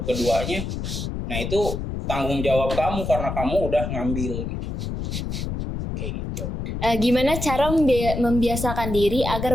keduanya, nah itu tanggung jawab kamu karena kamu udah ngambil gitu. Kayak gitu. Gimana cara membiasakan diri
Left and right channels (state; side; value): noise; left; rumble, 4 dB below the sound